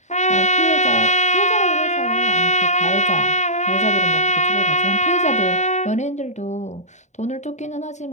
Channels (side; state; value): right; late; 0.34 ms